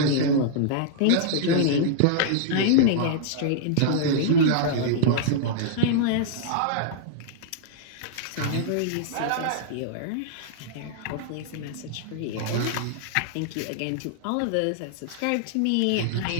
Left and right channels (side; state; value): both; different; correlation -0.01